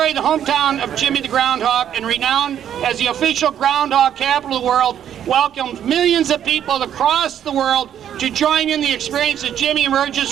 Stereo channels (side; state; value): left; quieter; 9.8 dB